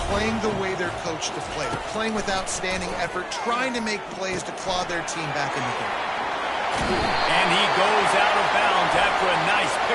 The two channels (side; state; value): both; identical; correlation 1.00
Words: playing the way they're coached to play. They're playing with outstanding effort, trying to make plays to claw their team back in the game. And he goes out of bounds after a nice